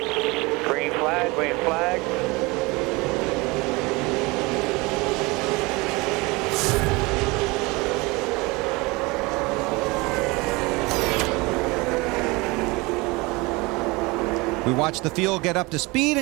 Green flag, green flag. We watch the field get up to speed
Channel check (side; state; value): left; quieter; 24.5 dB